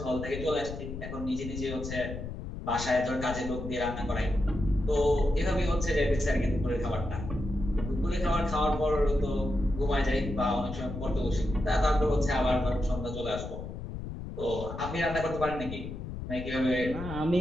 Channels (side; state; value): left; noise; rumble, 8 dB below the sound